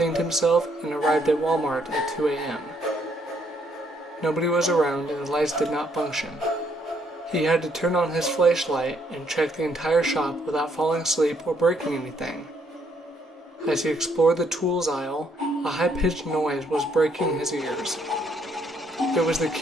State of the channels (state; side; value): normal; both; correlation 0.70